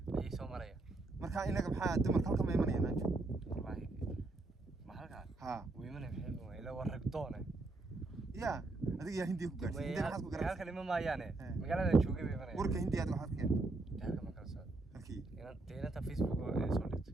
ay soo maraya marka inaga maxaa dumarka halka ma imanayaan anjo wallahi ma halka ha weymana maxay ila waragdoona ya adiga yaa Hindiya ku gaartay Hindiya maxaad ku gaartay halka lima maayaane magaalada joogay bay imanayaan warka Hindiya waxaad ka halka ma kala soo halkii inanta Facebook oo soo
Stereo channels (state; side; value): quieter; left; 3.1 dB